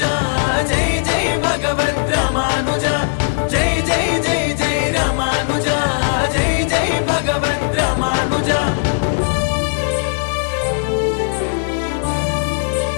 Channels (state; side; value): silent; right; digital silence